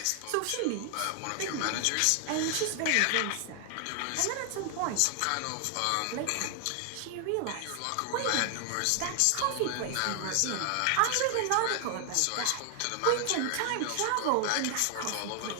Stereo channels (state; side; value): different; both; correlation 0.00